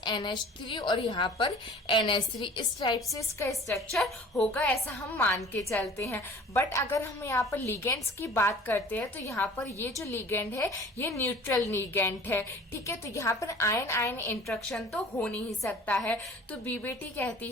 NH3 और यहाँ पर NH3। इस टाइप से इसका स्ट्रक्चर होगा, ऐसा हम मान के चलते हैं। बट अगर हम यहाँ पर लिगेंड्स की बात करते हैं तो यहाँ पर ये जो लिगेंड है ये न्यूट्रल लिगेंड है, ठीक है। तो यहाँ पर आयन आयन इंट्रैक्शन तो हो नहीं सकता है। तो बीबीटी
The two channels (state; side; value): normal; both; correlation 0.46